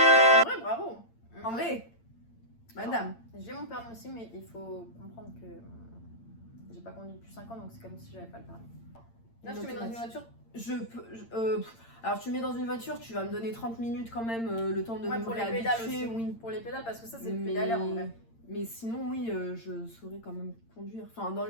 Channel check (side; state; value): right; late; 8.8 ms